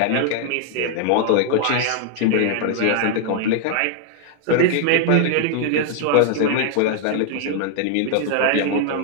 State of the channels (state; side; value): different; both; correlation 0.00